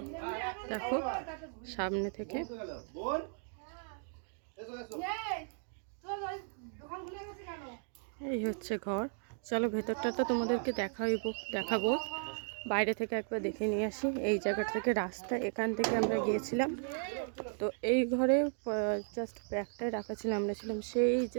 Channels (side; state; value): left; silent; 54 dB below the other